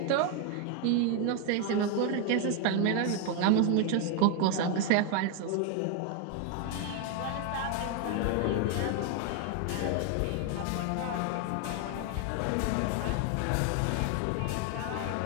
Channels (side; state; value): both; different; correlation 0.01